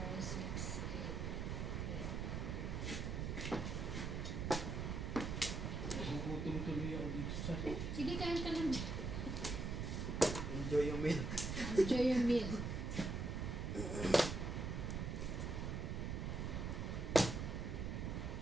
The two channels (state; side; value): noise; right; rumble, 2 dB below the sound